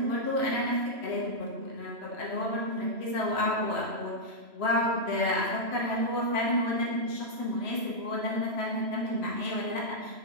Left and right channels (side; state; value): left; late; 3.0 ms